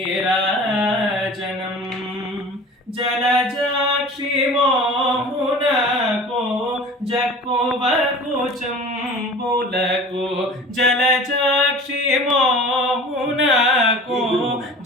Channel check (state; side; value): normal; both; correlation 0.41